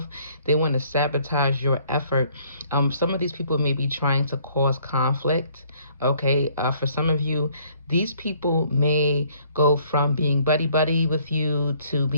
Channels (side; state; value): both; inverted; correlation -0.62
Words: They want to sabotage your effort. Some of these people may be trying to cause conflict. Okay, for some of you, these people may go from being buddy buddy with you to